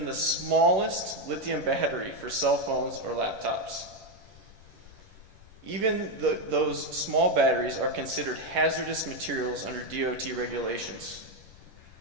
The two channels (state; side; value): late; left; 11 ms